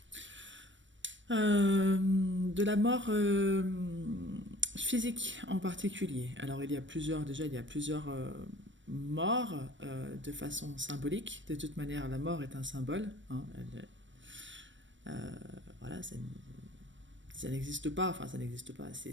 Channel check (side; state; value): left; late; 0.54 ms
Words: De la mort physique en particulier. Alors il y a plusieurs morts de façon symbolique. De toute manière, la mort est un symbole, hein. Voilà, ça n'existe pas, enfin ça n'existe pas.